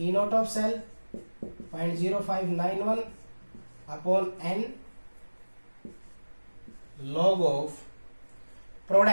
not of cell 0.0591 upon N log of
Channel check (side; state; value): both; inverted; correlation -1.00